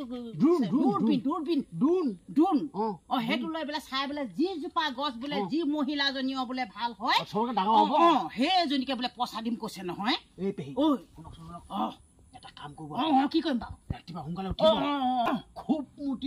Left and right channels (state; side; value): identical; both; correlation 1.00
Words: দূৰবীন সেইটো লৈ বোলে চাই বোলে যিজোপা গছ বোলে যি মহিলাজনীও বোলে ভাল হয় সেইজনীকে বোলে পইচা দিম কৈছে নহয় এটা কাম কৰিব কি কৰিম বাৰু ৰাতিপুৱা সোনকালে উঠিব খুব